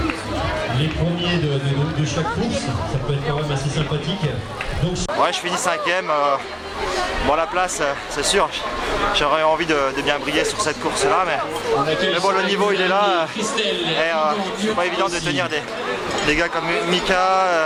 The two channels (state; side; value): identical; both; correlation 1.00